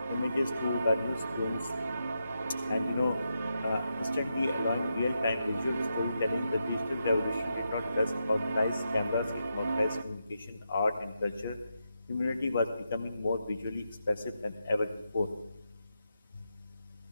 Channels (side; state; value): both; inverted; correlation -0.85